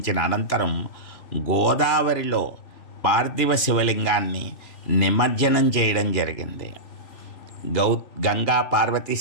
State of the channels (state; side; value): late; right; 3.0 ms